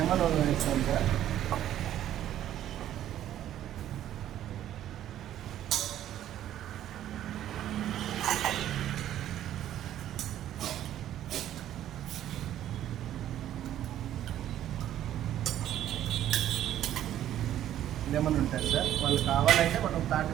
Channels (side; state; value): left; quieter; 11.9 dB